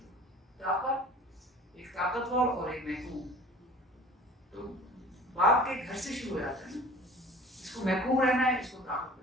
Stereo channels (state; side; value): normal; both; correlation 0.45